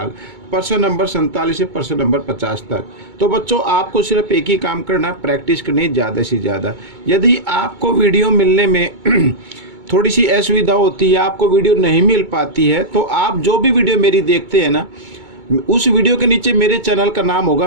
प्रश्न नंबर 47 से प्रश्न नंबर 50 तक। तो बच्चों, आपको सिर्फ एक ही काम करना, प्रैक्टिस करनी ज़्यादा से ज़्यादा। यदि आपको वीडियो मिलने में थोड़ी सी असुविधा होती है, आपको वीडियो नहीं मिल पाती है, तो आप जो भी वीडियो मेरी देखते हैं ना, उस वीडियो के नीचे मेरे चैनल का नाम होगा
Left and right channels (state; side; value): late; left; 2.2 ms